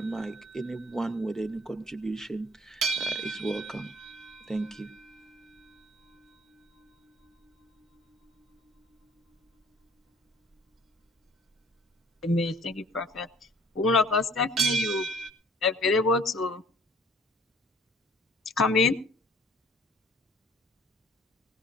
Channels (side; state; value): both; normal; correlation 0.54